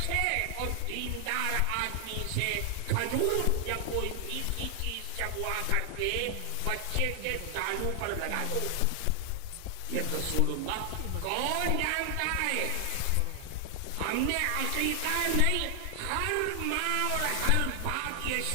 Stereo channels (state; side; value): different; both; correlation 0.00